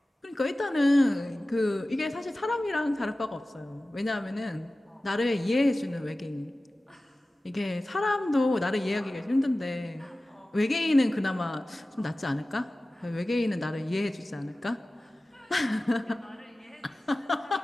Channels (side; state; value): both; normal; correlation 0.96